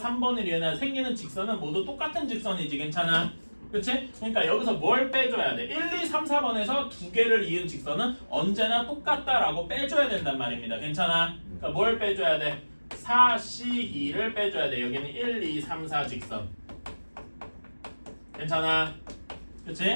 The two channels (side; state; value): both; inverted; correlation -1.00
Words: 3번을 이으나 생기는 직선은 모두 똑같은 직선이지. 괜찮아? 그치? 그러니까 여기서 뭘 빼줘야 돼? 1, 2, 3, 4번에서 2개를 이은 직선은 언제나 똑같다라고 빼줘야 된단 말입니다. 괜찮아? 그러니까 뭘 빼줘야 돼? 4C2를 빼줘야 돼. 여기는 1, 2, 3, 4 직선. 괜찮아?